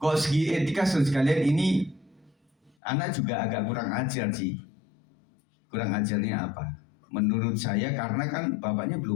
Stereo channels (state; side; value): drops out; right; at 2.7 s